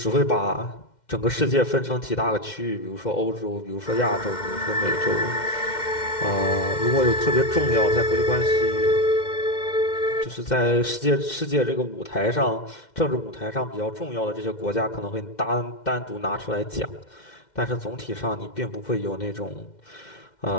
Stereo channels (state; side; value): late; right; 2.1 ms